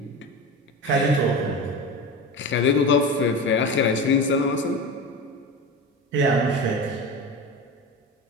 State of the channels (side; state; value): both; normal; correlation 0.26